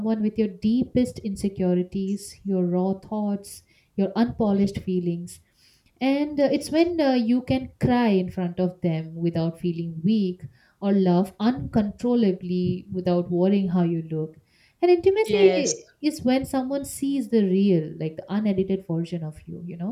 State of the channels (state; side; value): identical; both; correlation 1.00